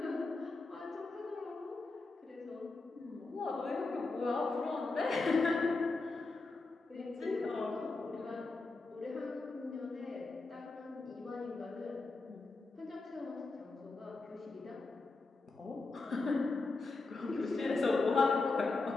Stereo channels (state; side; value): quieter; right; 3.6 dB